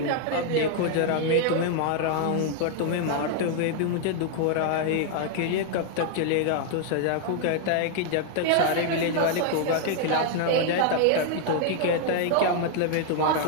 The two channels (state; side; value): different; both; correlation 0.00